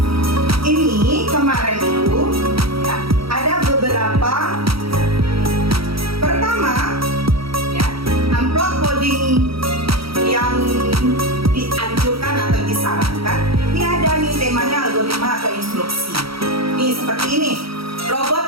Ini kemarin itu ya, ada beberapa seperti ini,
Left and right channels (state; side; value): late; left; 0.75 ms